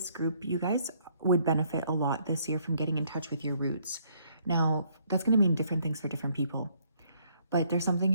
group, you guys would benefit a lot this year from getting in touch with your roots. Now, that's going to mean different things for different people, but there's something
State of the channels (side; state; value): both; inverted; correlation -0.67